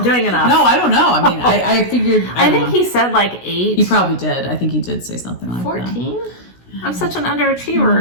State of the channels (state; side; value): late; right; 16 ms